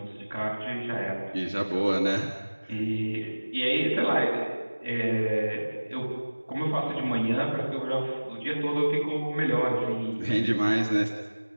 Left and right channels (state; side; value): inverted; both; correlation -1.00